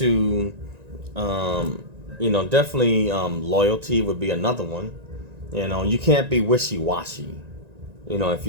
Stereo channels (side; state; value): left; late; 1.9 ms